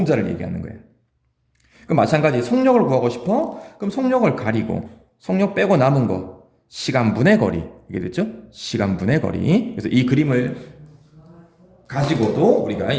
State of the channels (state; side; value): identical; both; correlation 1.00